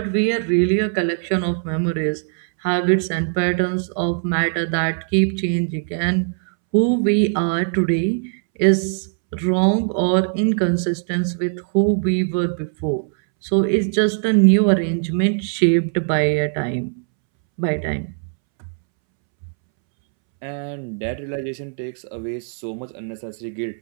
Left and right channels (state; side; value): silent; left; 65 dB below the other